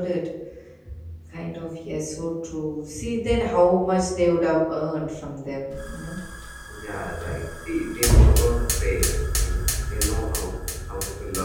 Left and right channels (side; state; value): both; identical; correlation 1.00